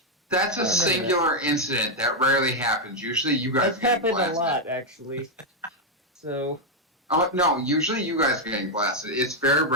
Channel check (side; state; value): both; normal; correlation 0.01